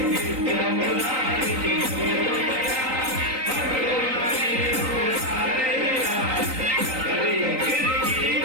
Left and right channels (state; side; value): late; left; 3.9 ms